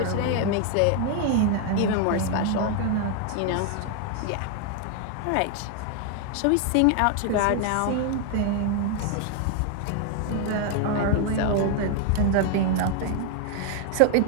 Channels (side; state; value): both; different; correlation 0.00